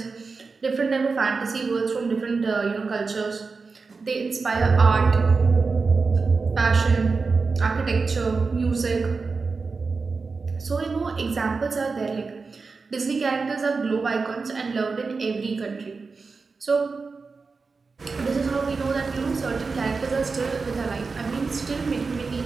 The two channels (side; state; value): left; quieter; 4.4 dB